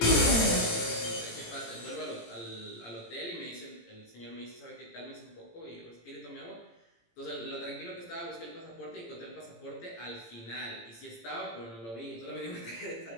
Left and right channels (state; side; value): late; right; 18 ms